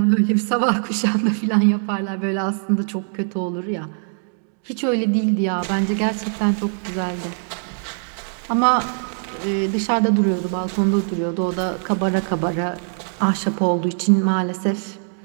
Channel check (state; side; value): silent; left; 64 dB below the other